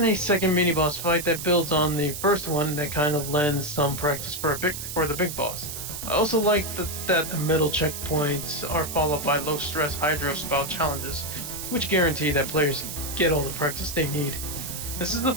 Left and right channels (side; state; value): right; noise; hiss, 7 dB below the sound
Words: a second mini boss fight that builds on the first one that kind of lends some practice for the big boss. I also like that the middle checkpoints are followed by low stress hydro spout challenges, which guarantee that players get all the practice they need. This is a